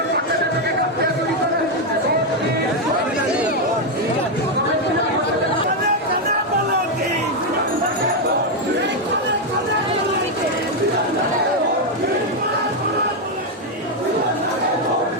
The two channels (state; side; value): normal; both; correlation 0.03